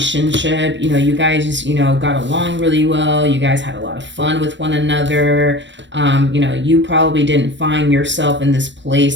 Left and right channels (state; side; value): late; left; 0.53 ms